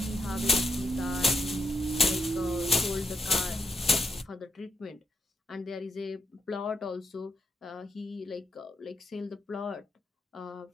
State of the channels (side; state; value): both; normal; correlation 0.80